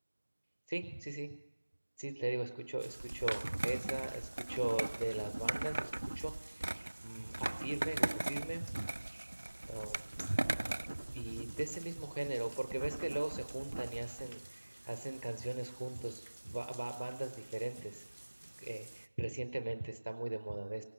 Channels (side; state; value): both; inverted; correlation -1.00